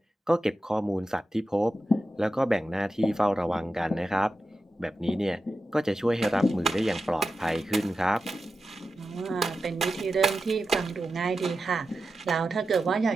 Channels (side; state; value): both; normal; correlation 0.91